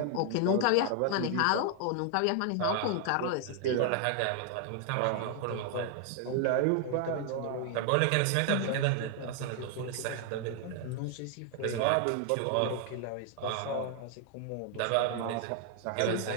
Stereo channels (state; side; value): different; both; correlation 0.00